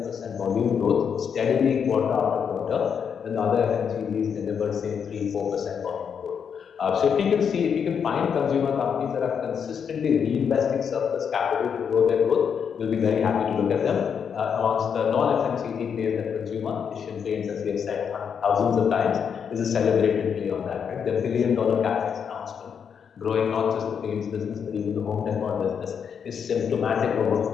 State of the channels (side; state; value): right; quieter; 7.2 dB